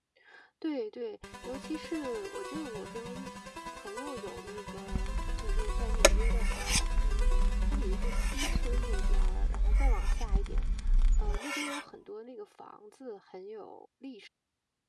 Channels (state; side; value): identical; both; correlation 1.00